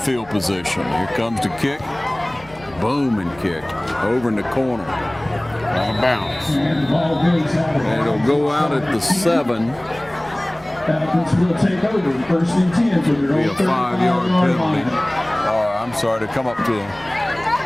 position. Here comes the kick. Boom, and kick over in the corner. Out of bounds. And it'll go out at the 7. Falcons will take over, first and 10 for their Be a 5-yard penalty. Or I'm sorry, to come up to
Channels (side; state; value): right; noise; rumble, 23 dB below the sound